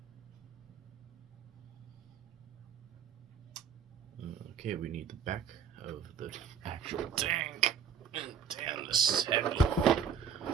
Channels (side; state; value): left; quieter; 7.1 dB